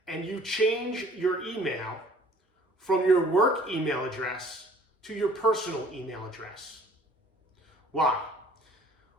and you change your email from your work email address to your personal email address. Why?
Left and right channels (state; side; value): normal; both; correlation 0.54